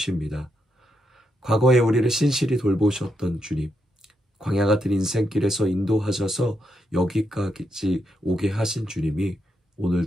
과거에 우리를 신실히 돌보셨던 주님, 광야 같은 인생길에서 인도하셔서 여기까지 오게 하신 주님이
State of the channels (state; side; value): normal; both; correlation 0.81